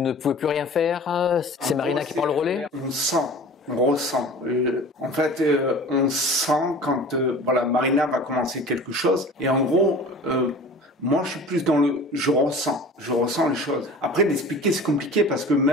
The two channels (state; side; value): normal; both; correlation 0.41